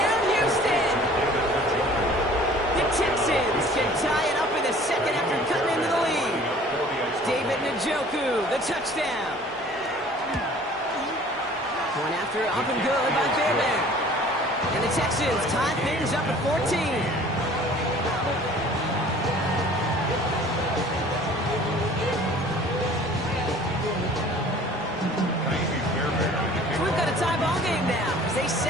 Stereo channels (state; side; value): normal; both; correlation 0.49